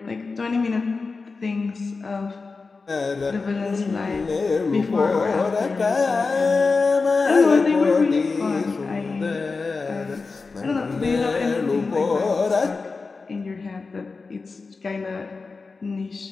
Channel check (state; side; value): quieter; right; 4.2 dB